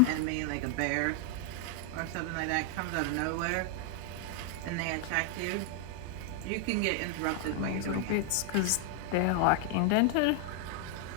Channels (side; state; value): both; different; correlation 0.00